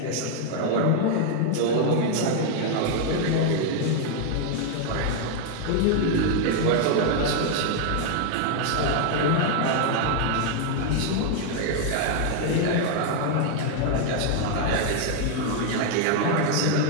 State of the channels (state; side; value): different; both; correlation 0.00